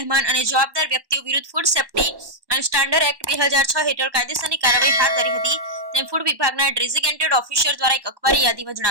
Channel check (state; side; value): late; left; 1.1 ms